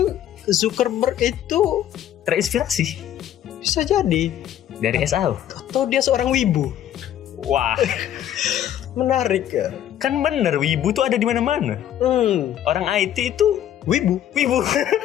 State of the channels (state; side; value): quieter; right; 11.1 dB